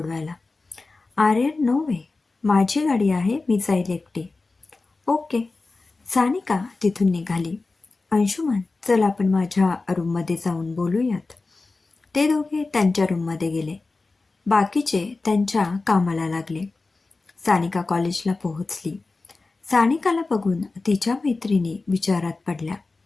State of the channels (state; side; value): quieter; right; 3.6 dB